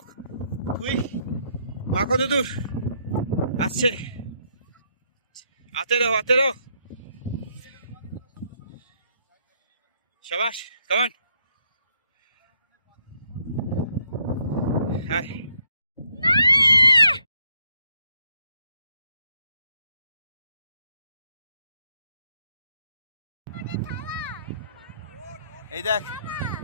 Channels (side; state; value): both; inverted; correlation -0.73